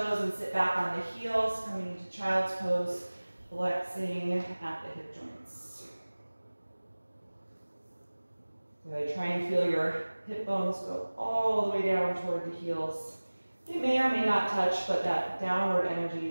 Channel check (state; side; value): inverted; both; correlation -1.00